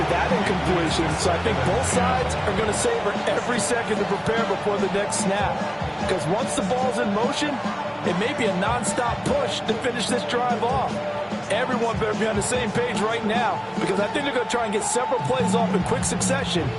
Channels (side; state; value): both; identical; correlation 1.00